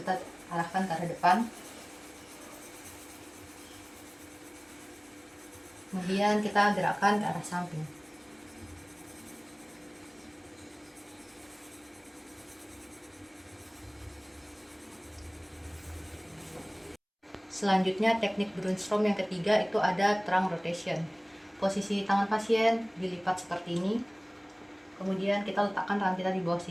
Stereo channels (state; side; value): identical; both; correlation 1.00